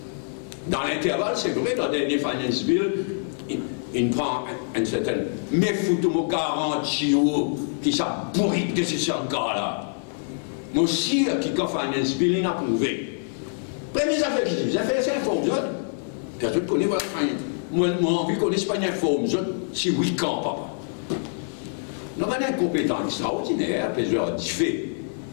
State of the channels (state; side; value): silent; right; digital silence